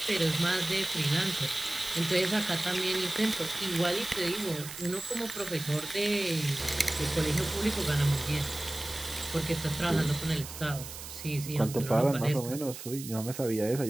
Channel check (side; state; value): right; noise; hiss, 11 dB below the sound